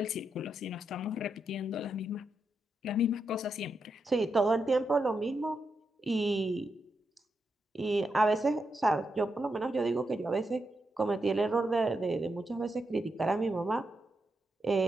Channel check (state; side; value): normal; both; correlation 0.84